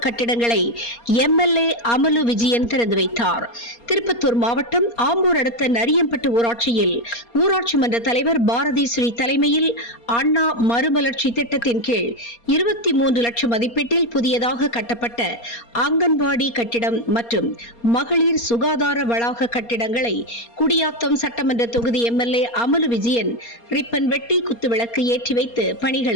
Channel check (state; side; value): late; right; 4.3 ms